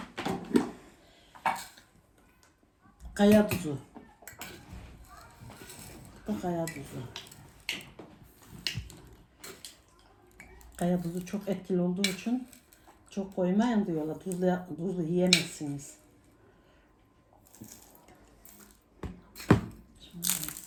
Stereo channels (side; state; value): both; identical; correlation 1.00